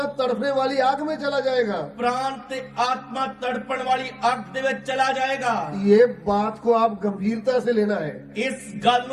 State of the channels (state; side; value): identical; both; correlation 1.00